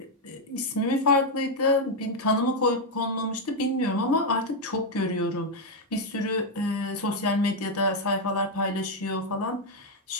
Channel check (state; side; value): normal; both; correlation 0.02